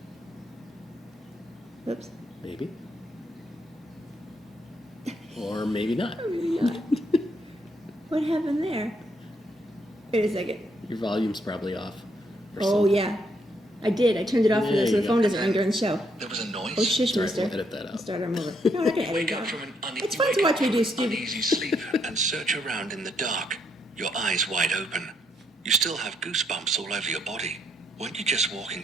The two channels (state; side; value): normal; both; correlation 0.74